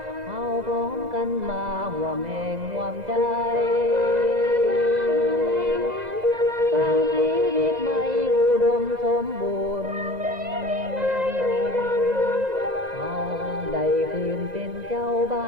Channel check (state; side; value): late; left; 2.0 ms